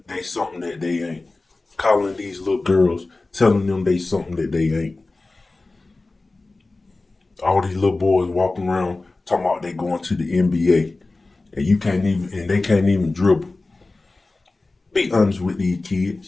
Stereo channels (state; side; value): quieter; right; 3.3 dB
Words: they something that they ain't. Calling these little girls, telling them they something that they ain't. All these little boys walking around talking about they going to the NBA, and you can't even, and they can't even dribble. Be honest with these